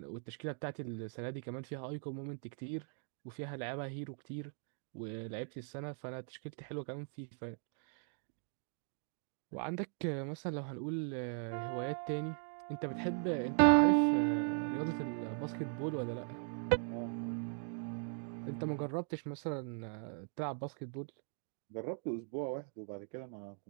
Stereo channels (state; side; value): silent; left; 51 dB below the other